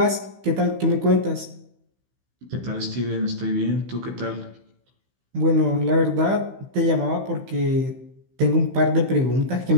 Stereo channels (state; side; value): late; left; 15 ms